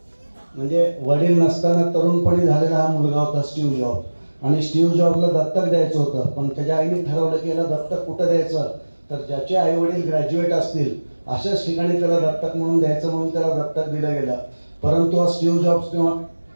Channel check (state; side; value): inverted; both; correlation -1.00